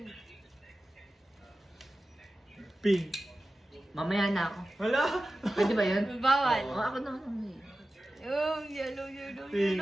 Pink. Mamaya na ako. Wala. Pwede ba yun? Bawal. Oo, ako naman ang may. Yung yellow, yellow, Pink,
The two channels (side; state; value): both; normal; correlation 0.95